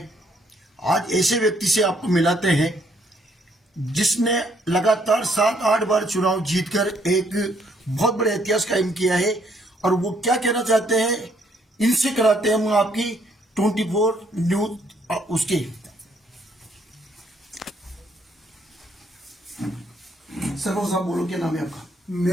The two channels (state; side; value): normal; both; correlation 0.68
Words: आज ऐसे व्यक्ति से आपको मिलाते हैं जिसने लगातार 7-8 बार चुनाव जीतकर एक बहुत बड़े इतिहास कायम किया है। और वो क्या कहना चाहते हैं, इनसे कराते हैं हम आपकी 24 न्यूज उसके। सरपंच साहब बोलो, क्या नाम है आपका?